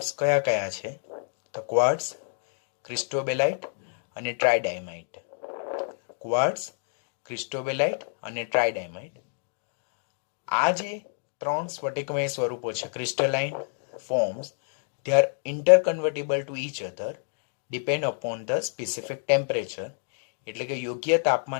કયા કયા છે? તો ક્વાર્ટઝ, ક્રિસ્ટોબેલાઇટ અને ટ્રાઇડાયમાઇટ. ક્વાર્ટઝ, ક્રિસ્ટોબેલાઇટ અને ટ્રાઇડાયમાઇટ. આ જે ત્રણ સ્ફટિકમય સ્વરૂપો છે, crystalline forms, they are interconvertible to each other depend upon the specific temperature. એટલે કે યોગ્ય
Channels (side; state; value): right; silent; digital silence